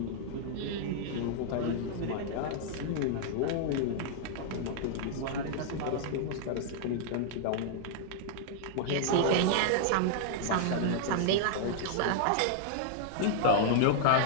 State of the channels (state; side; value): different; both; correlation -0.01